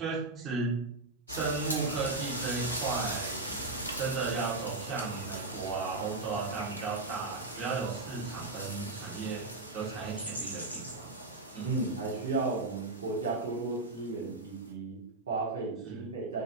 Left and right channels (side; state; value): left; quieter; 3.2 dB